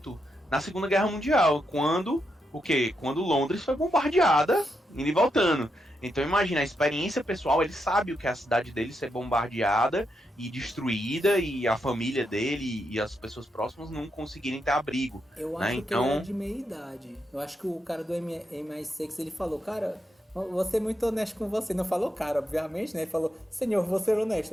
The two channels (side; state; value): both; normal; correlation 0.83